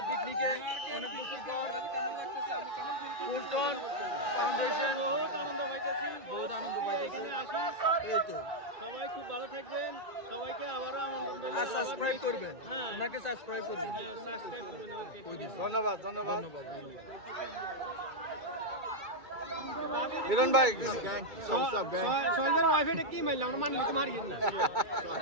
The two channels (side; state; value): left; late; 2.3 ms